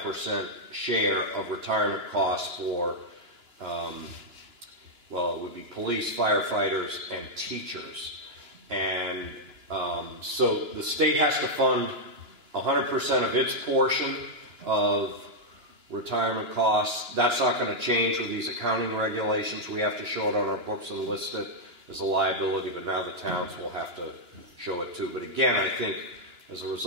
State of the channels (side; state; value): left; late; 2.9 ms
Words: share of retirement costs for, well, it would be police, firefighters, and teachers. And so the state has to fund 100% of its portion of retirement costs. That's not going to change with these accounting regulations. We have to show it on our books and list it as a liability, but now the towns will have to show it too. But again, I think as a